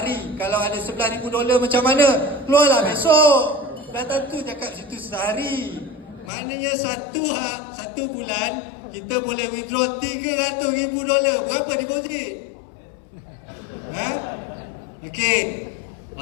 Kalau ada $11,000 macam mana? Keluarlah besok. Dah tentu cakap situ sehari. Maknanya satu bulan kita boleh withdraw $300,000. Berapa deposit? Okey.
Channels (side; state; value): right; drops out; at 6.3 s